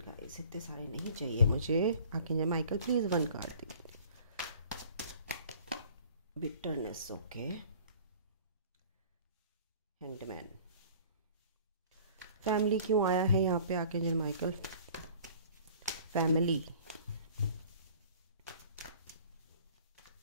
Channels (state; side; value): inverted; both; correlation -0.49